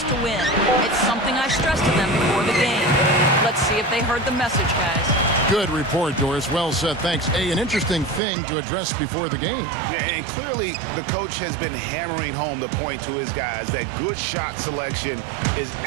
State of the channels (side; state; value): left; drops out; at 8.2 s